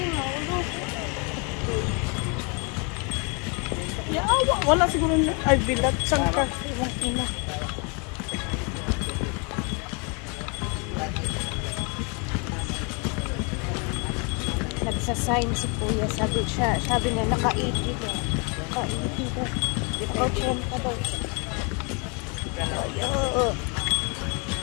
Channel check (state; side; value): quieter; right; 33.7 dB